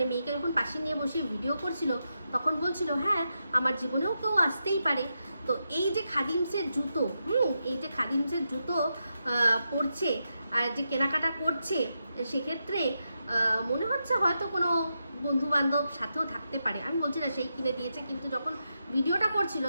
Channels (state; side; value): inverted; both; correlation -0.86